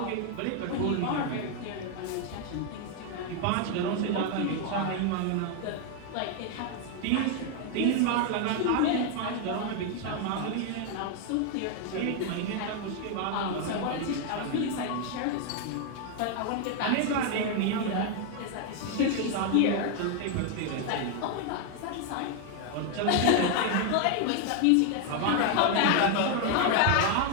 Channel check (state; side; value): different; both; correlation 0.00